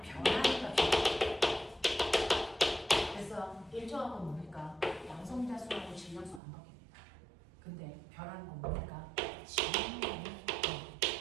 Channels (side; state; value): left; drops out; at 6.4 s